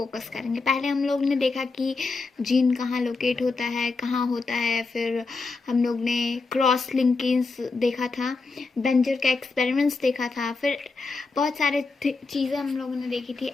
करेंगे। पहले हम लोग ने देखा कि जीन कहाँ लोकेट होता है, कहाँ होता है, फिर हम लोग ने क्रॉस लिंकेज देखा था, बेंजर का एक्सपेरिमेंट्स देखा था, फिर बहुत सारे चीज़ें हम लोगों ने देखी थी।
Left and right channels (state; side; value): quieter; right; 4.0 dB